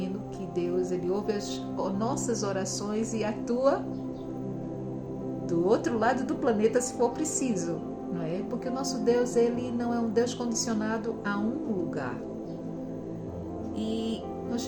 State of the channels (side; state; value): both; identical; correlation 1.00